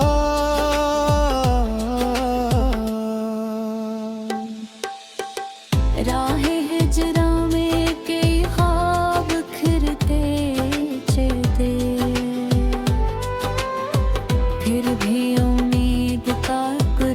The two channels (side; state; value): both; identical; correlation 1.00